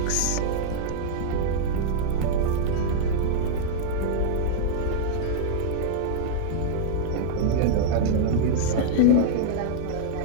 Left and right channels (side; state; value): both; different; correlation -0.01